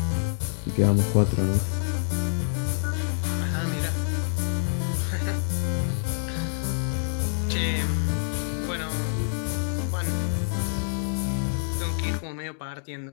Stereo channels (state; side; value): silent; right; digital silence